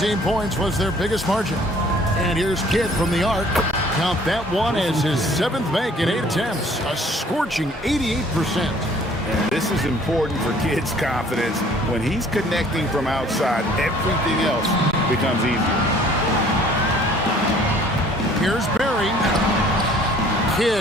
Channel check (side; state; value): both; normal; correlation 0.55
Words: points was their biggest margin. And here's Kidd from the arc. Count that one as his 7th make in 8 attempts. A scorching 88%. And this is important for Kidd's confidence. When he's connecting from outside, everything else becomes easier. Here's Barry.